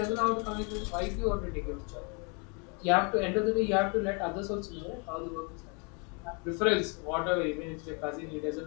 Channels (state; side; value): quieter; right; 34.1 dB